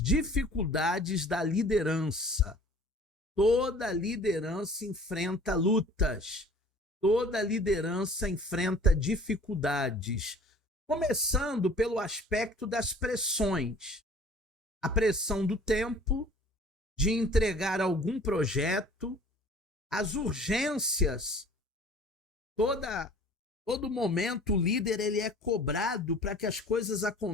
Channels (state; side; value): normal; both; correlation 0.49